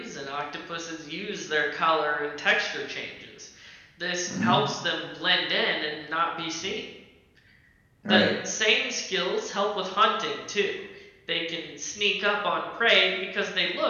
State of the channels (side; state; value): both; identical; correlation 1.00